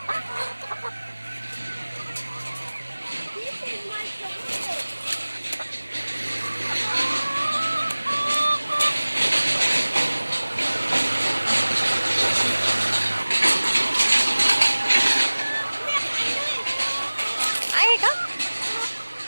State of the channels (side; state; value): both; inverted; correlation -1.00